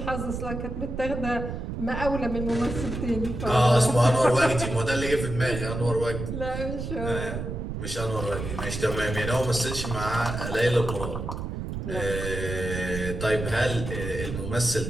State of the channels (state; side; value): noise; right; rumble, 5 dB below the sound